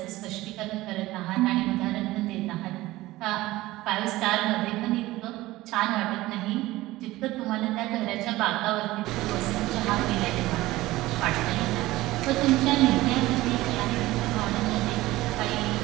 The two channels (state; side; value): quieter; left; 17.8 dB